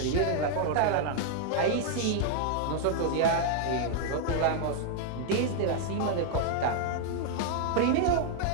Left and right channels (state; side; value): different; both; correlation -0.01